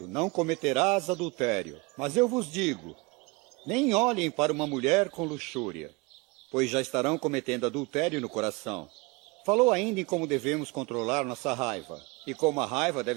não cometerás adultério. Mas eu vos digo, nem olhem para uma mulher com luxúria, pois já estarão cometendo adultério no coração. Falou ainda em como devemos controlar nossa raiva, e como a raiva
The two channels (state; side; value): quieter; left; 26.2 dB